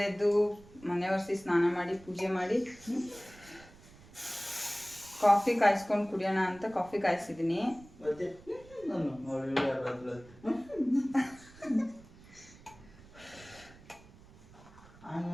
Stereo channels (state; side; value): noise; right; rumble, 22 dB below the sound